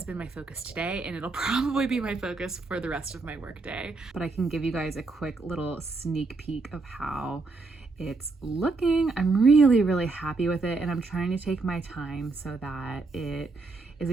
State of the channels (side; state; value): left; quieter; 3.7 dB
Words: been my focus today, and it'll probably be my focus for the rest of my work day. But I can give you guys a quick little sneak peek of how it's looking. I'm really, really happy with it, and I'm trying to take my time so that it is